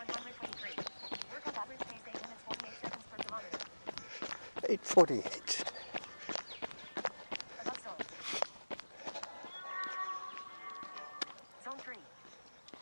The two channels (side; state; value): both; inverted; correlation -1.00